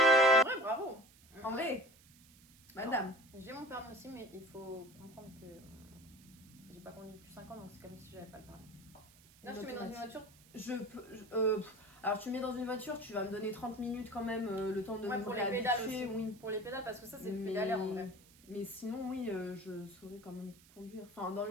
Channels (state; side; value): noise; right; hiss, 25 dB below the sound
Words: vrai, bravo. En vrai, madame. J'ai mon permis aussi, mais il faut comprendre que j'ai pas conduit depuis 5 ans, donc c'est comme si j'avais pas le permis. Là, je te mets dans une voiture. Alors, tu mets dans une voiture, tu vas me donner 30 minutes quand même, le temps de Ouais, me pour les pédales réhabituer, aussi. oui. Pour les pédales, parce que ça, c'est le Mais- pédalaire en vrai. Mais sinon, oui, je saurais quand même conduire. Enfin, dans